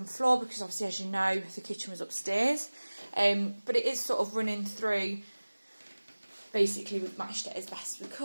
floor, because obviously, as you know, the kitchen was upstairs. But it is sort of running through. Basically, we've matched it as best we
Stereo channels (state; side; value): inverted; both; correlation -1.00